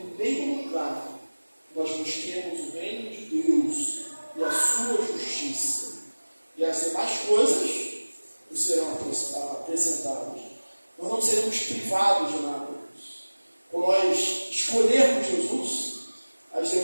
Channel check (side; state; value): both; inverted; correlation -1.00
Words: primeiro lugar, nós busquemos o reino de Deus e a sua justiça. E as demais coisas nos serão acrescentadas. Nós não seremos privados de nada. Quando nós escolhermos Jesus, as